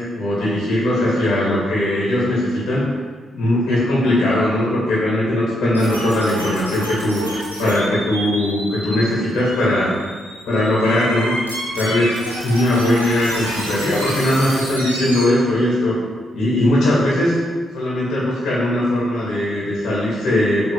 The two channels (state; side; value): normal; both; correlation 0.77